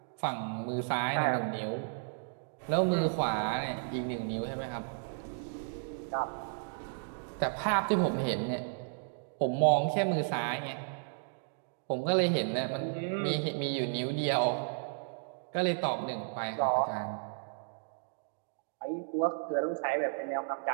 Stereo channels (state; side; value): silent; left; digital silence